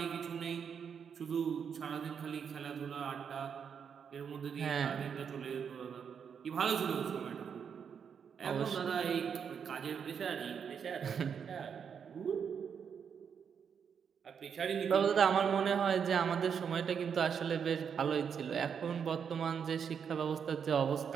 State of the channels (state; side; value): quieter; left; 7.1 dB